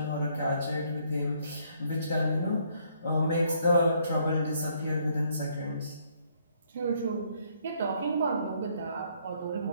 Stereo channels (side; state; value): both; inverted; correlation -0.68